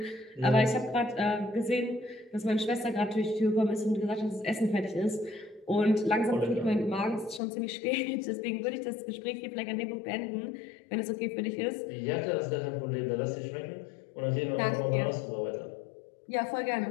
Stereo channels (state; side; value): drops out; right; at 7.4 s